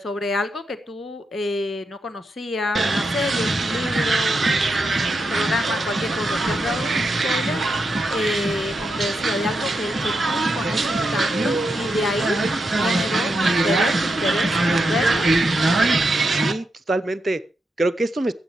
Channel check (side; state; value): both; normal; correlation 0.85